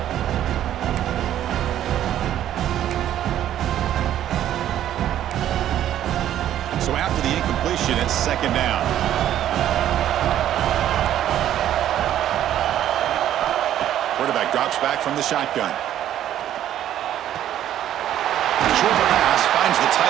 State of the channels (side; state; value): left; quieter; 11.6 dB